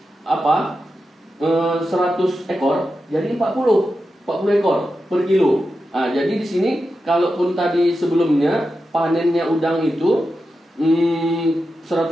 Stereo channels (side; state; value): both; normal; correlation 0.90